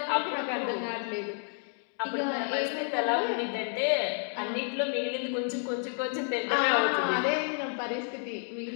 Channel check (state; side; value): silent; right; 58 dB below the other